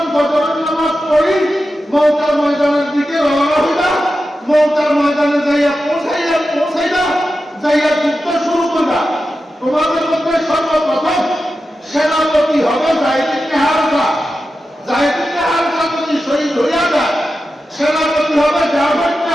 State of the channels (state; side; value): normal; both; correlation 0.91